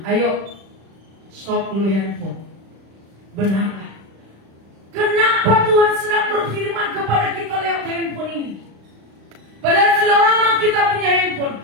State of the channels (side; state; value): left; late; 36 ms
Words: ayo stop dulu handphone. Benarlah. Kenapa Tuhan sedang berfirman kepada kita lewat handphone ini? Padahal sudah lama kita punya handphone,